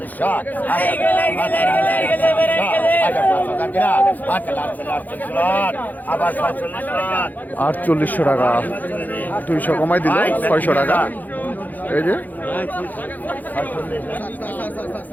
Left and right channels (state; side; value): late; right; 0.083 ms